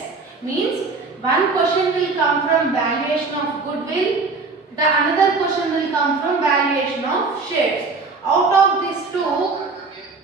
Means one question will come from valuation of goodwill. The another question will come from valuation of shares. Out of these two,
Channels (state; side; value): quieter; left; 4.1 dB